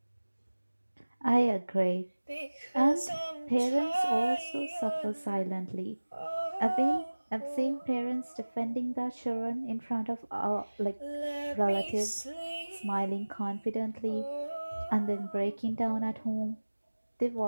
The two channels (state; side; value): inverted; both; correlation -1.00